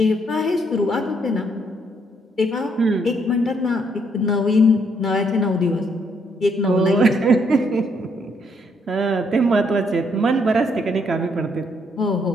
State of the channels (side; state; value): both; normal; correlation 0.72